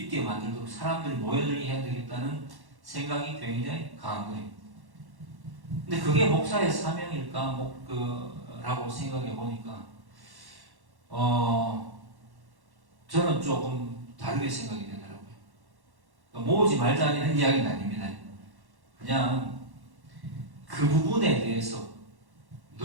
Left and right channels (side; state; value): left; late; 1.1 ms